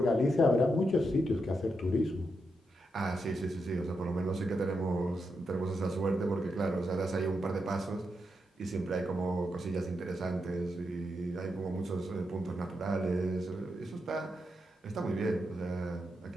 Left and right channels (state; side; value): normal; both; correlation 0.84